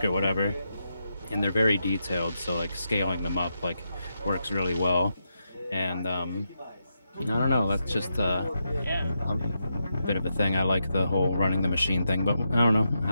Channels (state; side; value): inverted; both; correlation -0.85